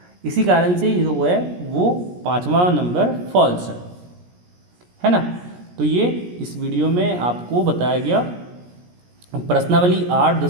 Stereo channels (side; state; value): left; late; 17 ms